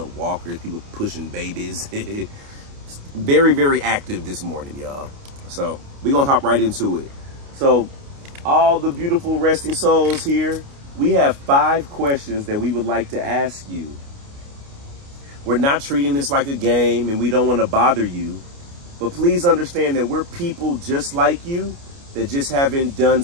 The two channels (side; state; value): left; late; 29 ms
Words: walkers, people pushing babies. Very active this morning, y'all. So we're gonna hop right into it. So all the beautiful resting souls here, we have 5 questions that we would like to ask you. We're not treating this like a game, and we don't want to bother you, but please understand that we're people just like you that just haven't done